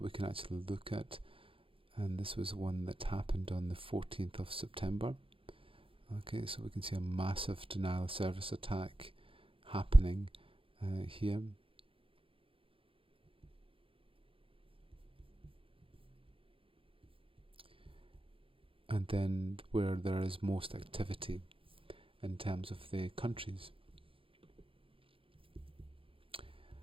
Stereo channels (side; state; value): left; late; 0.26 ms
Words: we can actually look at, and this was one that happened on the 14th of September. Okay, so we can see a massive denial of service attack happening here. And then where there is most activity in terms of the countries.